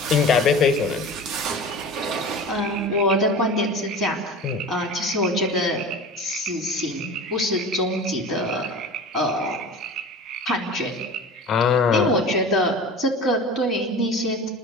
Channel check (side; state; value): both; normal; correlation 0.35